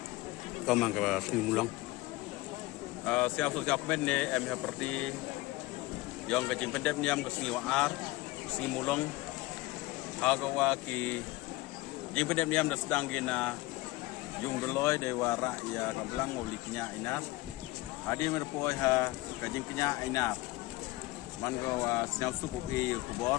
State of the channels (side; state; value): right; quieter; 20.1 dB